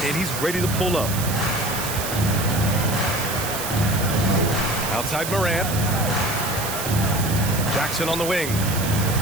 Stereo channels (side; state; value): right; noise; hiss, 6 dB below the sound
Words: and he's ready to pull up. Outside Morant. Jackson on the wing.